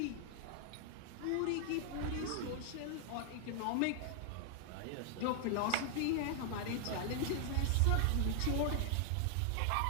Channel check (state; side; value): different; both; correlation 0.00